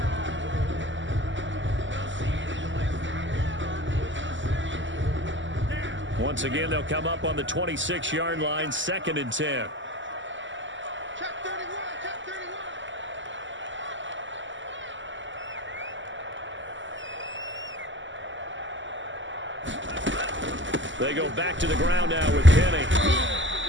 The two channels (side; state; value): left; late; 0.54 ms